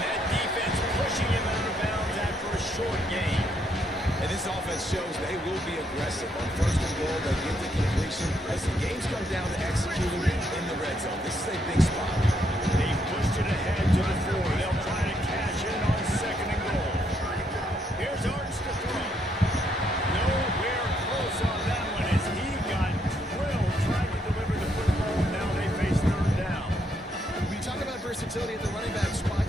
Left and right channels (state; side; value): normal; both; correlation 0.74